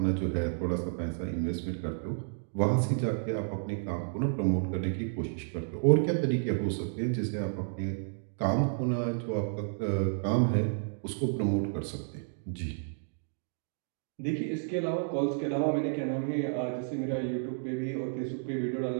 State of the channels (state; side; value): silent; left; digital silence